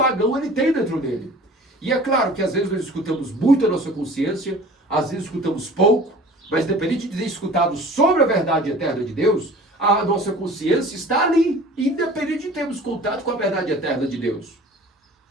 ele tem dentro dele. E é claro que às vezes nós escutamos muito a nossa consciência, às vezes escutamos pouco, mas independente de ter escutado sobre a verdade eterna de Deus, a nossa consciência está ali, independente de termos contato com a verdade eterna de Deus.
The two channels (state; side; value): normal; both; correlation 0.44